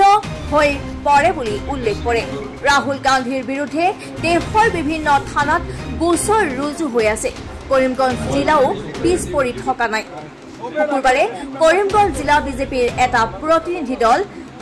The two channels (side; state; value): both; identical; correlation 1.00